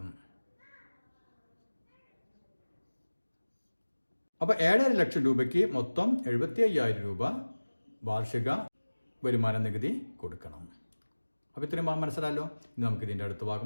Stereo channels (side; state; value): both; inverted; correlation -1.00